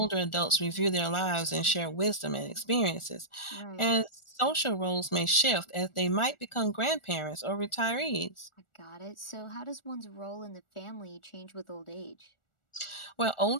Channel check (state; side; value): late; right; 1.4 ms